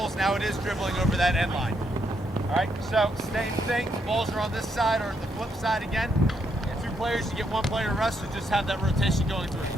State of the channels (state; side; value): normal; both; correlation 0.77